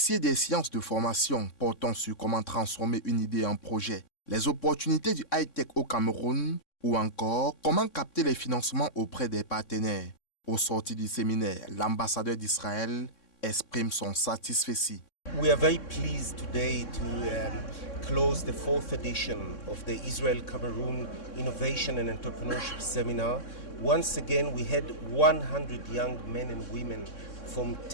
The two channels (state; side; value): late; right; 3.6 ms